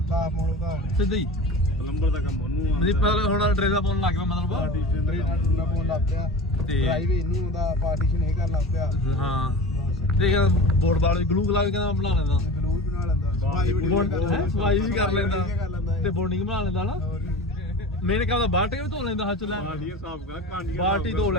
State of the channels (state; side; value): normal; both; correlation 0.34